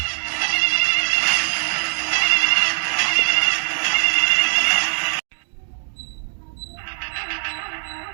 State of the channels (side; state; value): left; silent; digital silence